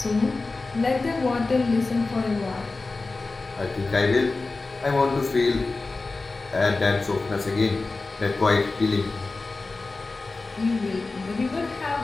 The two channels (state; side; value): quieter; right; 3.6 dB